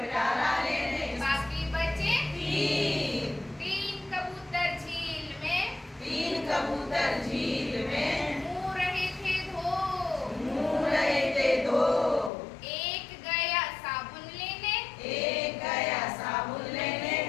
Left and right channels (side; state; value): right; drops out; at 12.3 s